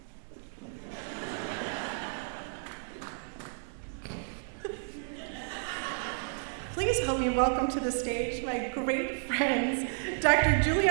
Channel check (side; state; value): left; silent; digital silence